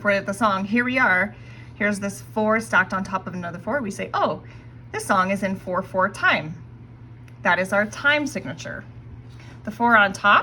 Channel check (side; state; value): both; identical; correlation 1.00